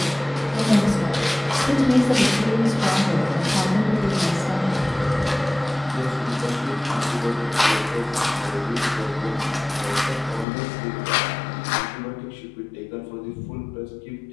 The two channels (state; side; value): drops out; right; at 10.5 s